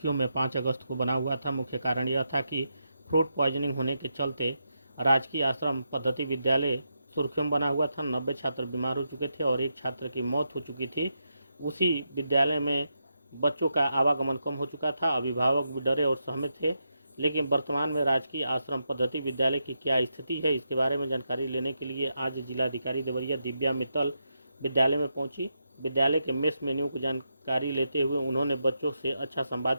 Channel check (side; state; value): both; inverted; correlation -0.84